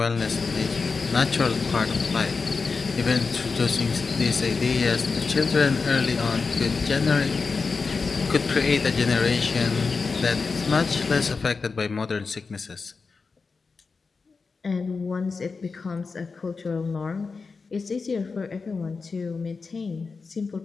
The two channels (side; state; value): right; quieter; 4.6 dB